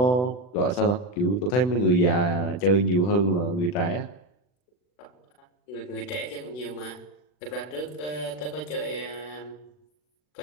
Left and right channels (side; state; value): right; late; 40 ms